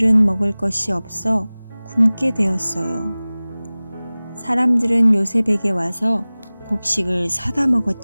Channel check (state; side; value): inverted; both; correlation -0.99